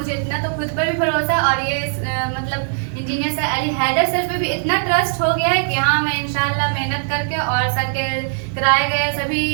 इतना तो खुद पर भी भरोसा और ये engineer sir Ali Haider sir पे भी इतना ट्रस्ट हो गया है कि हाँ, मैं इंशाल्लाह मेहनत करके और सर के कराए गए सभी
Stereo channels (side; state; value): left; silent; digital silence